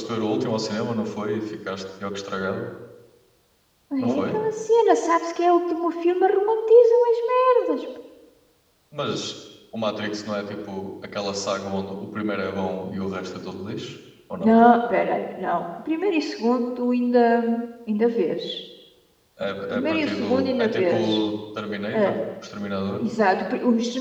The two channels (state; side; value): identical; both; correlation 1.00